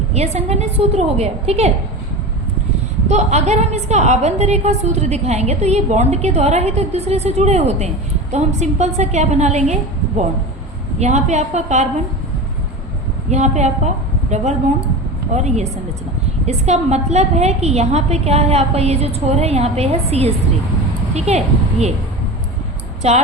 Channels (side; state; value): both; normal; correlation 0.28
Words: ये संघनित सूत्र हो गया। ठीक है, तो अगर हम इसका आबंध रेखा सूत्र दिखाएंगे तो ये बॉन्ड के द्वारा ही तो एक दूसरे से जुड़े होते हैं। तो हम सिंपल सा क्या बना लेंगे, बॉन्ड, यहाँ पे आपका कार्बन, यहाँ पे आपका डबल बॉन्ड, और ये संरचना। इसका मतलब है कि यहाँ पे क्या है आपका, ये जो छोर है यहाँ पे है CH3। ठीक है, ये